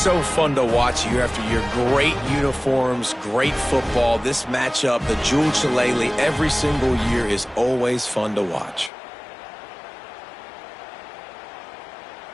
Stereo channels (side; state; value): right; drops out; at 8.9 s